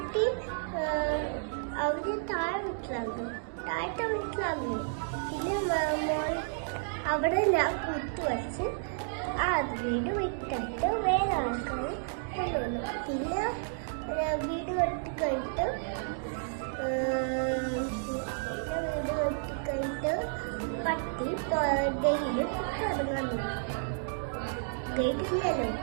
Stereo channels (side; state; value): left; silent; digital silence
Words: അവര് താഴത്തെ വീട്ടിലായിരുന്നു. പിന്നെ അവിടെ ഞാൻ കുത്തുവച്ച് വീട് വിട്ടിട്ട് വേറെ ആൾക്കാർ കൊണ്ടുവന്നു. പിന്നെ വീട് കെട്ടിക്കഴിഞ്ഞിട്ട് പട്ടി ഡെയിലി ഇറങ്ങുന്നു. കേട്ടില്ലല്ലോ.